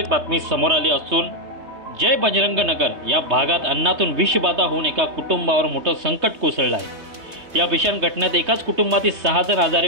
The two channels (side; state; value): left; late; 3.2 ms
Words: बातमी समोर आली असून जय बजरंग नगर या भागात अन्नातून विषबाधा होऊन एका कुटुंबावर मोठं संकट कोसळलं आहे। या भीषण घटनेत एकाच कुटुंबातील 6 जण आजारी